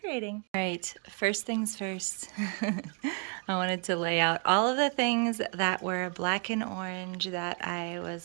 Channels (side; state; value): left; quieter; 39.6 dB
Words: All right, first things first. I wanted to lay out all of the things that were black and orange that I